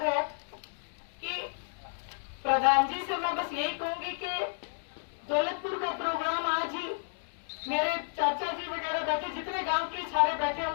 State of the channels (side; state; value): right; silent; digital silence